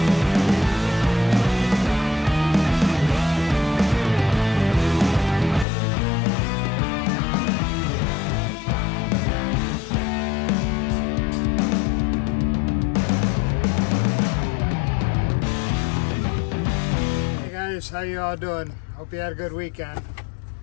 How you all doing? Hope you had a good weekend.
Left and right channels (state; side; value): drops out; right; at 5.7 s